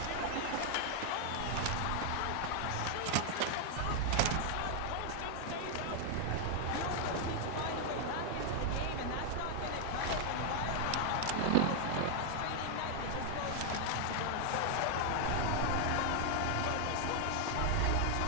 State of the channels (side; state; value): both; different; correlation 0.00